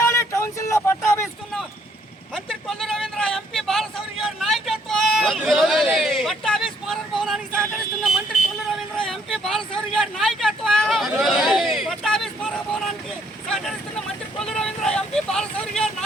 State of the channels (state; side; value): normal; both; correlation 0.68